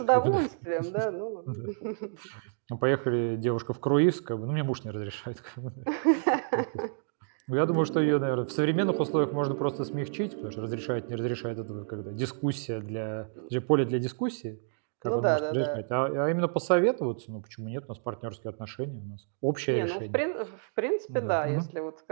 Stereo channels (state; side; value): silent; left; digital silence